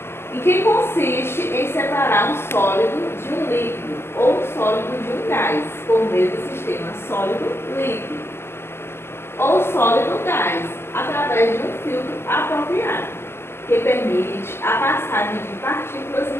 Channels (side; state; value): right; late; 0.12 ms